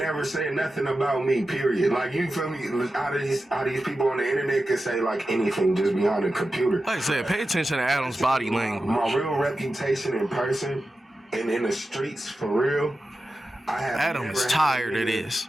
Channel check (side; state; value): both; normal; correlation 0.92